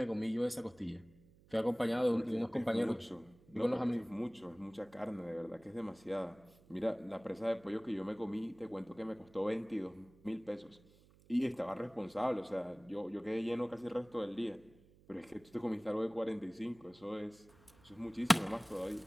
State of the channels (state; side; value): noise; right; hum, 26 dB below the sound